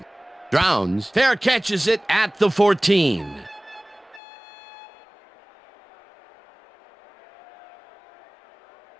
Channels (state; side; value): drops out; right; at 4.2 s